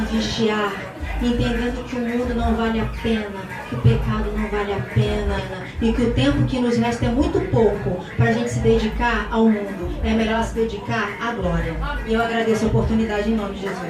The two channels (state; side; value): identical; both; correlation 1.00